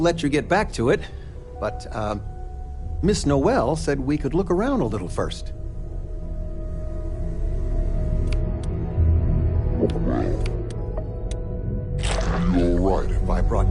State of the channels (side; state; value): both; identical; correlation 1.00